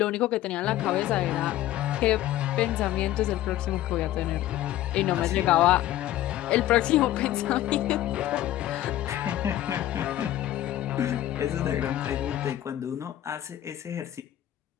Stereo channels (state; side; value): quieter; right; 13.6 dB